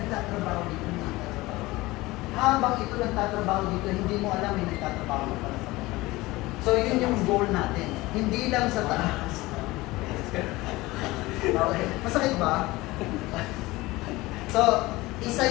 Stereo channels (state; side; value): quieter; right; 20.1 dB